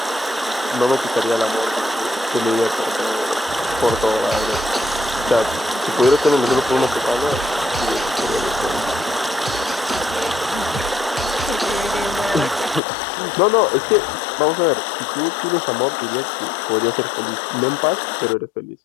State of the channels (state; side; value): drops out; right; at 12.8 s